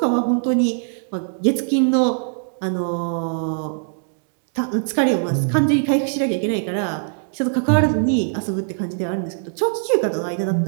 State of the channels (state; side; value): silent; left; digital silence